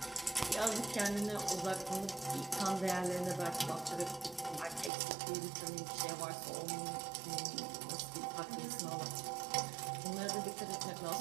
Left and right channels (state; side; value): drops out; left; at 4.9 s